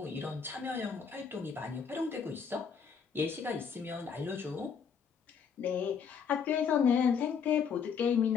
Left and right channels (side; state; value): right; quieter; 6.6 dB